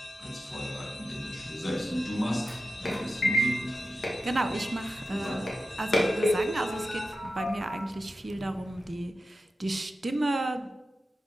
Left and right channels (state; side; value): normal; both; correlation 0.93